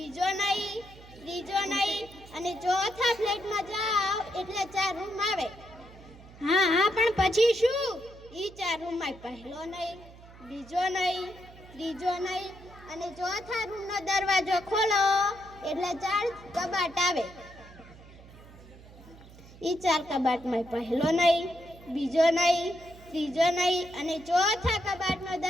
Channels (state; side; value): noise; right; hum, 20 dB below the sound